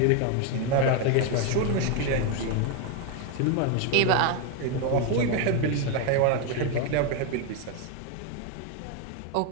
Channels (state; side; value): different; both; correlation 0.01